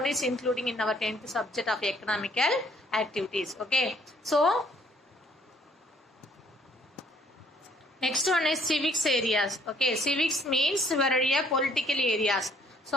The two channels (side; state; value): both; normal; correlation 0.63